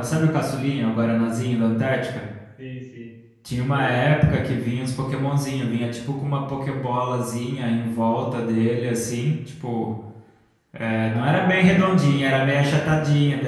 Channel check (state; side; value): identical; both; correlation 1.00